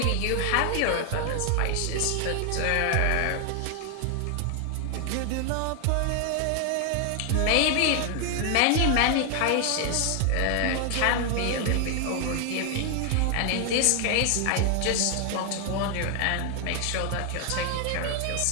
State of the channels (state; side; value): different; both; correlation 0.00